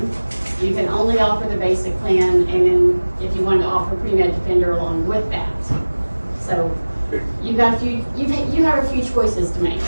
you can only offer the basic plan, and then if you wanted to offer pre-med defender along with that. So, you have a few choices to make.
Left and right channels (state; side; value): inverted; both; correlation -1.00